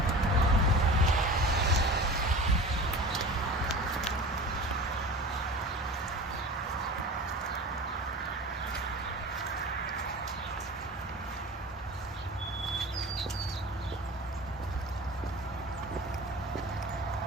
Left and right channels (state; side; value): normal; both; correlation 0.36